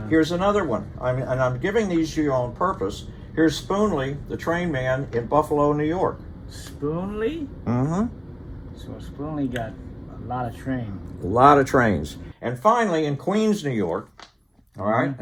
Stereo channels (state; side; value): identical; both; correlation 1.00